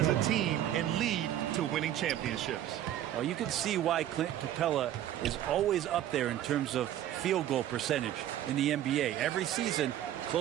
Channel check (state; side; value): quieter; left; 12.0 dB